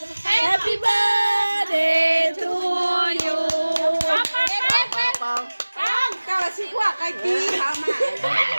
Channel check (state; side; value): inverted; both; correlation -1.00